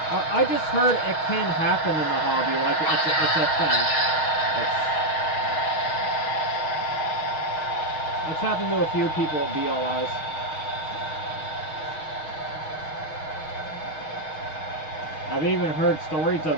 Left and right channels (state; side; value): late; right; 6.3 ms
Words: I just heard it can happen in the hobby, like it's a thing. It's happened to a few people at BLIs. I've even heard stories